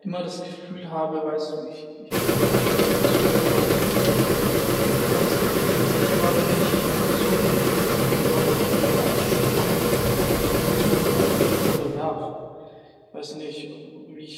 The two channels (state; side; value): identical; both; correlation 1.00